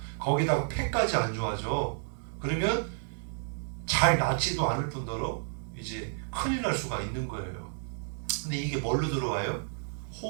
거기다가 폐까지 안 좋아져. 그러면 잘 낫지도 않을 뿐더러 이제 큰일 날 수가 있는 거예요. 근데 이게 뭘로 들어와요?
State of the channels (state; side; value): silent; left; digital silence